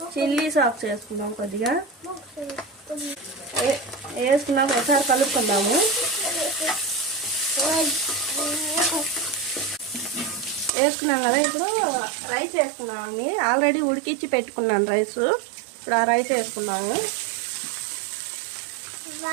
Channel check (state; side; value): drops out; left; at 10.7 s